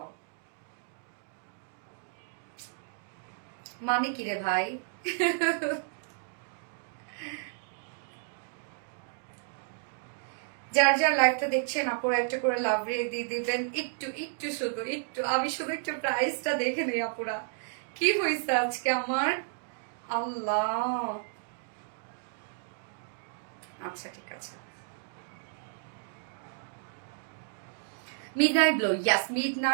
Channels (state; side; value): silent; left; digital silence